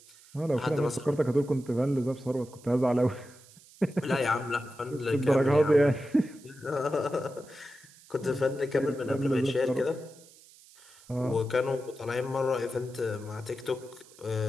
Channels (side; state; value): right; noise; hiss, 24 dB below the sound